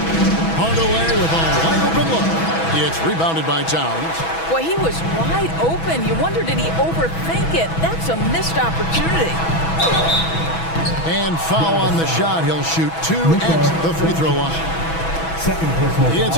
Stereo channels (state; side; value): late; right; 6.1 ms